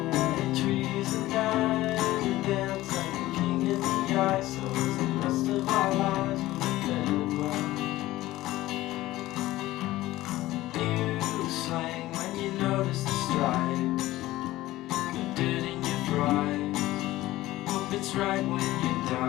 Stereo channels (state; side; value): quieter; right; 16.7 dB